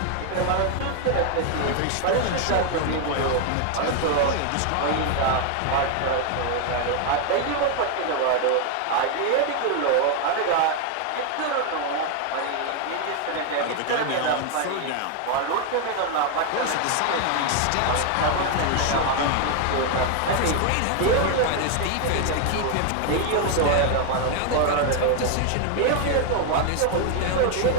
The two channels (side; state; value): both; different; correlation 0.00